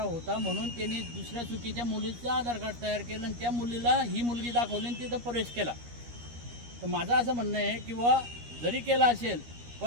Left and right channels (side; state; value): left; late; 13 ms